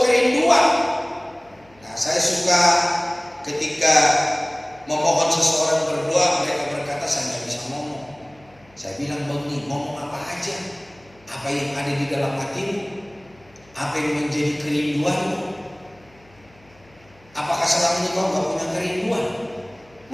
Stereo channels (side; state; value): left; noise; hum, 29 dB below the sound